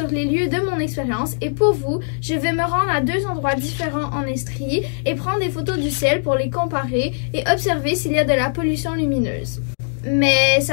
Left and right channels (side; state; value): right; silent; digital silence